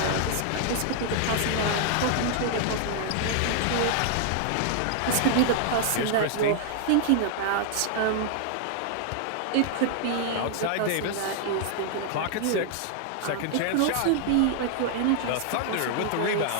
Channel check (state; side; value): different; both; correlation 0.00